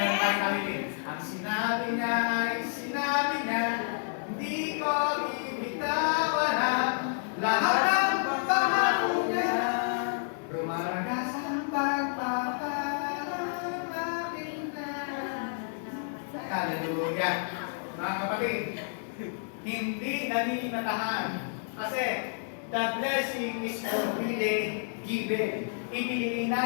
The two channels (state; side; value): silent; right; digital silence